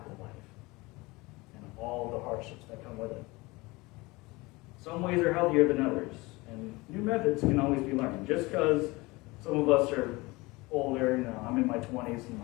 life and all the hardships that come with it. Some ways are healthier than others, and new methods can always be learned. Just because some of us are older, I'm in my 20s and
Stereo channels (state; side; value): quieter; right; 23.0 dB